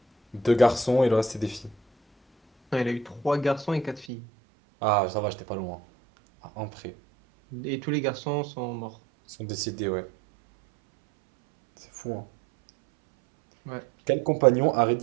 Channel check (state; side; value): drops out; left; at 4.0 s